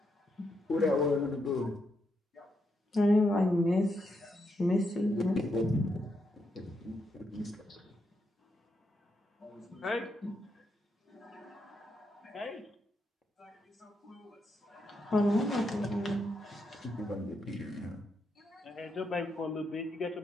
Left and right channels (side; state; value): both; normal; correlation 0.81